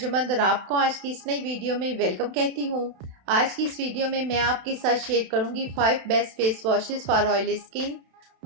और आपको आज की इस नई वीडियो में वेलकम कहती हूं। आज की इस वीडियो में मैं आपके साथ शेयर करूंगी 5 best face washes for oily skin.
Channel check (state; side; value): late; left; 32 ms